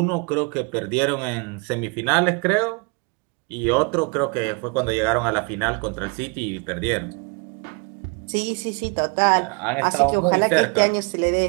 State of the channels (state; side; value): quieter; left; 32.1 dB